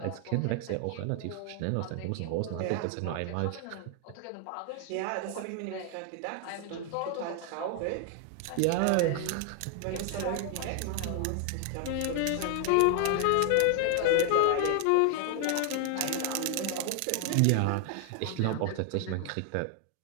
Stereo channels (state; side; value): different; both; correlation 0.00